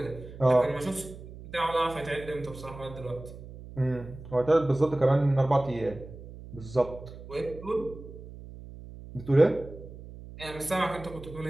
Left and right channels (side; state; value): right; noise; hum, 15 dB below the sound